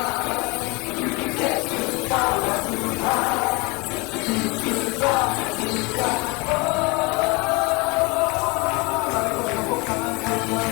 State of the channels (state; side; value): quieter; right; 27.1 dB